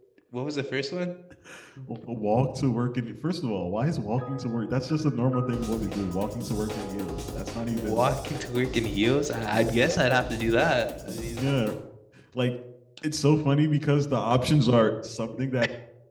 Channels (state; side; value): identical; both; correlation 1.00